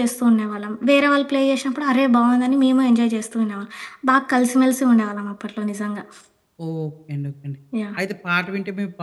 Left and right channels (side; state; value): both; identical; correlation 1.00